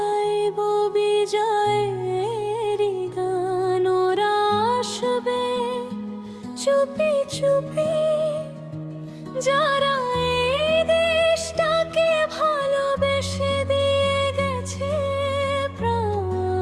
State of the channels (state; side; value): identical; both; correlation 1.00